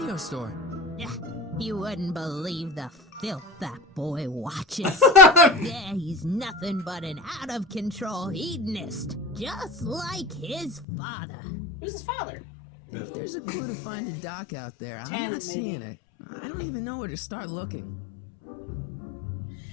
store. Yeah, You wouldn't believe the filth that boy watches. Yeah, he's nothing but an out-of-control hedonist, just like his father. Who's his father? If there's a clue to find a doc out there, I'm Tanner, not seeing it. I don't even know where to start looking.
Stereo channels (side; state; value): right; drops out; at 10.9 s